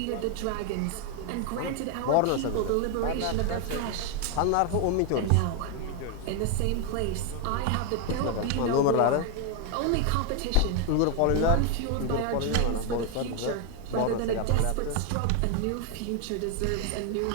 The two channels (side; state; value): both; different; correlation 0.01